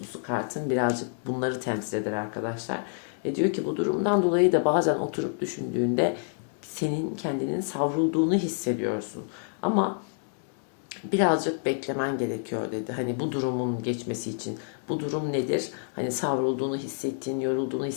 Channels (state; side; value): silent; right; 59 dB below the other